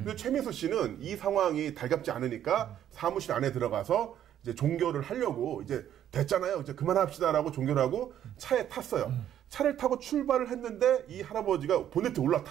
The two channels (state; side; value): quieter; left; 10.7 dB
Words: 최민수 씨는 이 상황이 달갑지 않으니까 사무실 안에 들어가서 이제 종결을 하려고 이제 됐잖아요. 이제 그만합시다라고 종결을 하고 차에 탔어요. 차를 타고 출발을 했는데 이 할아버지가 보네트에